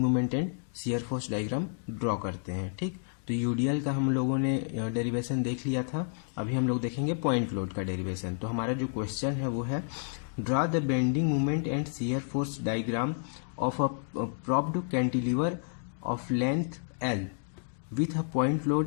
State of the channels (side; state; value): right; silent; digital silence